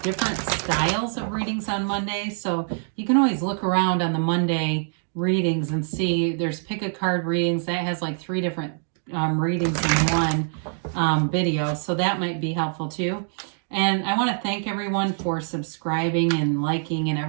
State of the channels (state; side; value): silent; left; digital silence